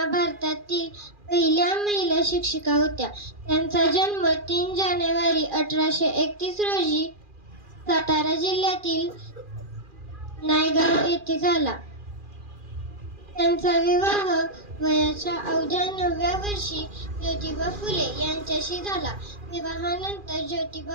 भारतातील पहिल्या महिला शिक्षिका होत्या. त्यांचा जन्म 3 जानेवारी 1831 रोजी सातारा जिल्ह्यातील नायगाव येथे झाला. त्यांचा विवाह वयाच्या अवघ्या 9व्या वर्षी ज्योतिबा फुले यांच्याशी झाला. विवाहानंतर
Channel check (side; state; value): left; late; 2.4 ms